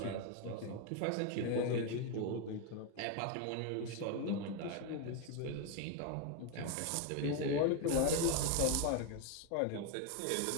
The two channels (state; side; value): different; both; correlation 0.01